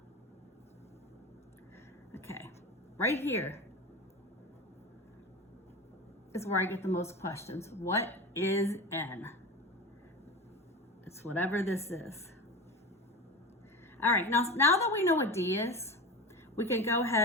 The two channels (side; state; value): both; normal; correlation 0.27